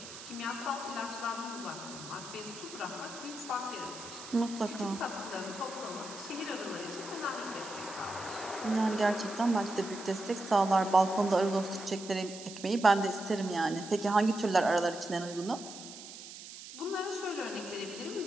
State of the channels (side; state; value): right; noise; hiss, 13 dB below the sound